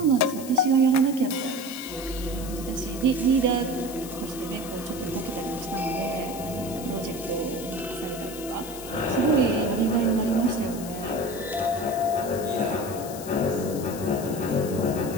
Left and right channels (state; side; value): noise; left; hiss, 13 dB below the sound